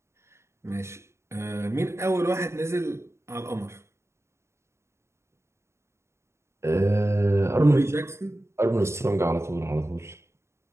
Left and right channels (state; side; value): late; left; 0.13 ms